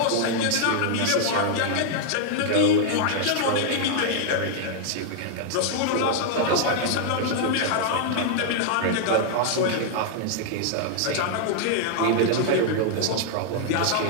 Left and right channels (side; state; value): both; different; correlation -0.01